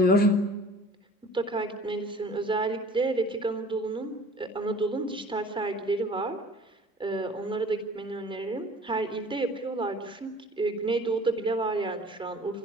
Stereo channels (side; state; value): both; normal; correlation 0.47